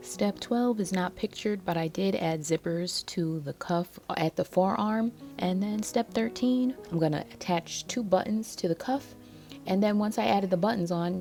Step 12 is not pictured, but I did add zippers to the cuff at the forearm. And then step 13, I'm going to attach 2 buttons to the cuff. And then once I added the buttons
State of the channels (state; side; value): identical; both; correlation 1.00